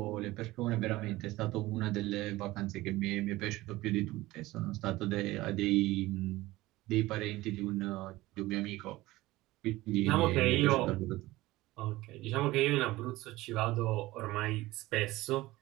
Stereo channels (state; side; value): quieter; left; 18.4 dB